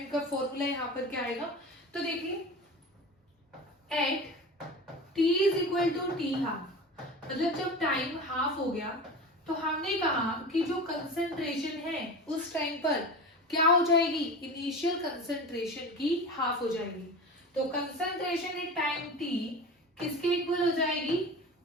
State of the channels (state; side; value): normal; both; correlation 0.31